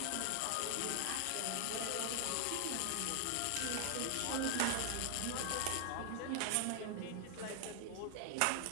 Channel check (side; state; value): both; different; correlation 0.00